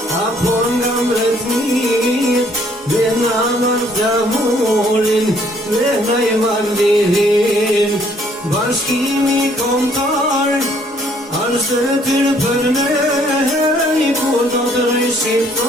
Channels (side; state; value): both; normal; correlation 0.63